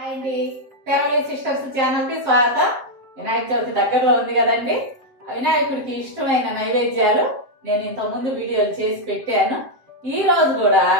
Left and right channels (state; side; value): late; left; 7.6 ms